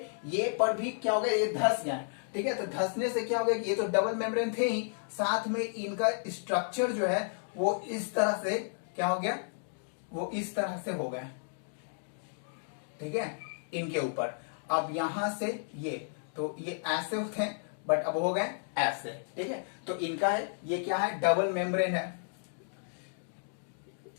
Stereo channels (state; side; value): silent; right; digital silence